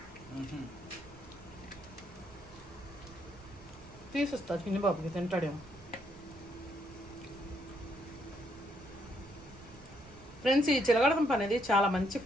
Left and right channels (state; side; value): noise; right; rumble, 20 dB below the sound